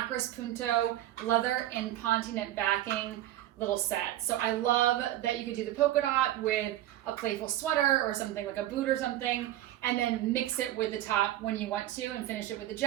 Punto leather and pontinet backing little set. So I love that you could do the polka dot with a playful sweater or something like a boot or something, and then mix it with the top when you want to and finish it with the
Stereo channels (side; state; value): left; quieter; 13.8 dB